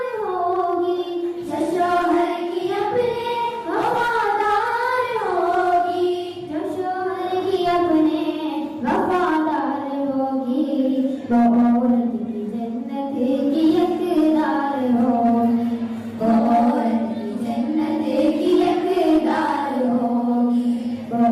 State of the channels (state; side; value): identical; both; correlation 1.00